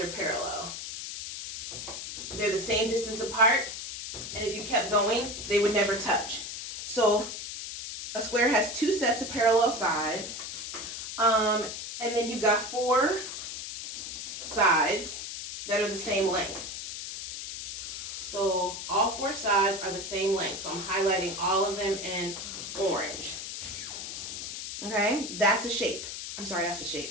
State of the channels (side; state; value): left; noise; hiss, 7 dB below the sound